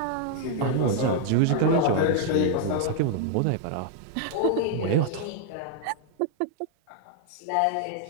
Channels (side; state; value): both; different; correlation 0.00